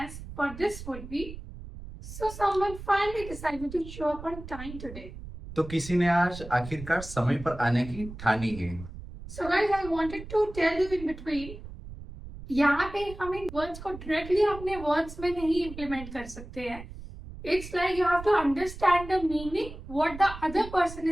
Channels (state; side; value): noise; right; rumble, 13 dB below the sound